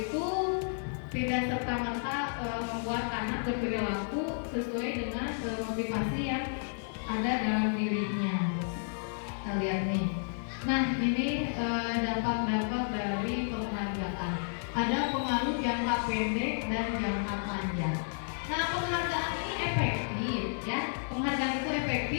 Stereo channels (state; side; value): silent; right; digital silence